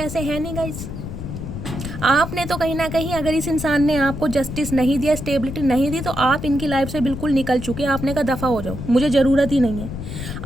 हैं नहीं गाइस, आपने तो कहीं ना कहीं अगर इस इंसान ने आपको जस्टिस नहीं दिया, स्टेबिलिटी नहीं दी, तो आप इनकी लाइफ से बिल्कुल निकल चुके हैं। आपने कहा दफ़ा हो जाओ, मुझे ज़रूरत ही नहीं है।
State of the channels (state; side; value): noise; left; rumble, 8 dB below the sound